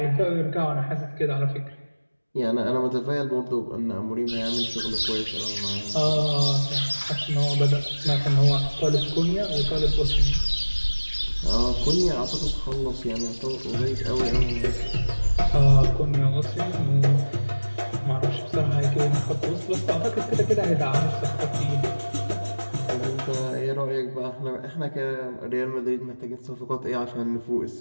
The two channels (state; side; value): inverted; both; correlation -1.00